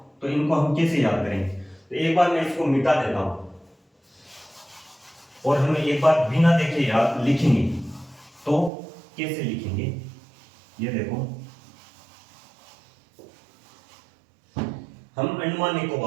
तो इनको हम कैसे याद करेंगे? तो एक बार मैं इसको मिटा देता हूं और हम एक बार बिना देखे याद लिखेंगे। तो कैसे लिखेंगे? ये देखो, हम अंडमान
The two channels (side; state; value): left; drops out; at 8.7 s